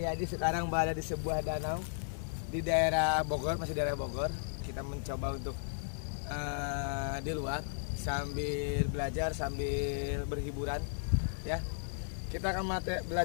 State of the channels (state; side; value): silent; right; 55 dB below the other